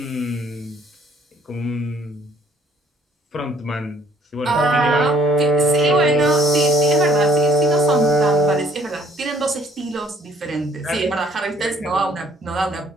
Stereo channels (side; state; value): both; normal; correlation 0.59